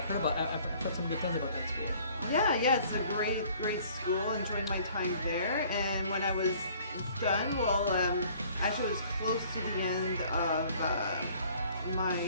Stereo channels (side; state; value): both; inverted; correlation -0.56